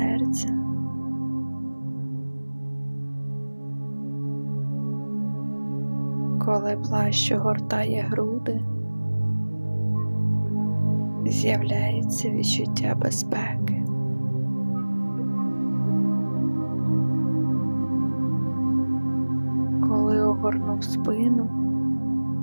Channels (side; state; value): both; inverted; correlation -1.00